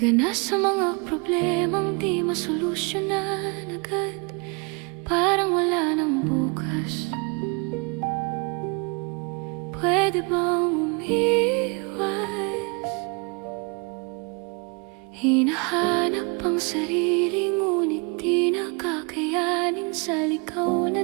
na sa mga problemang di masolusyonan agad, parang wala nang bukas. Pwede bang umiwas? Hinahanap ang sarili, ngunit di nakakayanin sa ligaw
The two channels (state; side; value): quieter; left; 32.2 dB